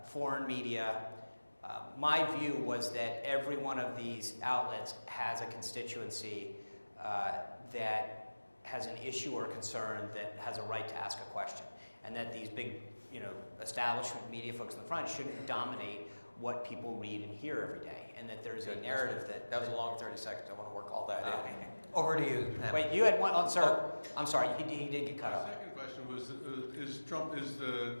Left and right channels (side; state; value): both; inverted; correlation -1.00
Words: foreign media. My view was that every one of these outlets has a constituency that has an issue or concern that has a right to ask a question, and that these big, establishment media folks in the front shouldn't dominate what people read and hear every day, and that there's a narrative that... That was a long 30 seconds. I want to work all that in. Over to you, Pam. Wait, you had one... Oh, sir. I'm sorry. He did get cut My off. second question was, is